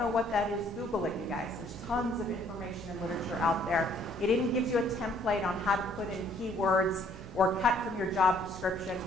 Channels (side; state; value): both; normal; correlation 0.62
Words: what that is, Google it, you guys. There's tons of information and literature out there. It even gives you a template on how to put in keywords or cut from your job description,